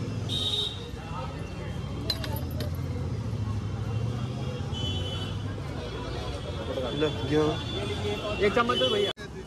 एक चम्मच दो भैया।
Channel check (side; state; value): both; identical; correlation 1.00